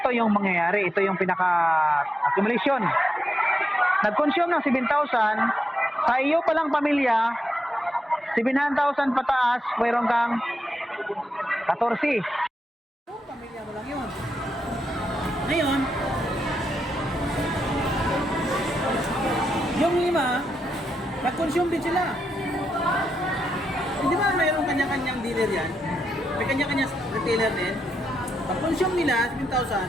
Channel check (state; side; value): normal; both; correlation 0.84